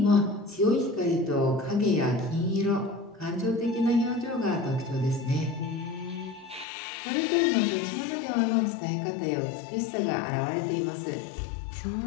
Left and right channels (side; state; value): right; drops out; at 6.7 s